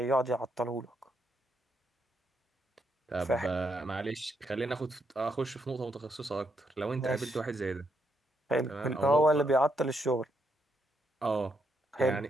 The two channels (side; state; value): both; normal; correlation 0.78